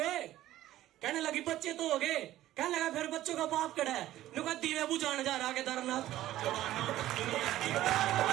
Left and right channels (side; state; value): left; quieter; 14.2 dB